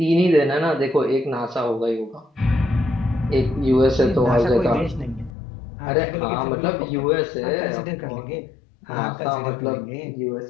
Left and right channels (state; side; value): drops out; right; at 5.3 s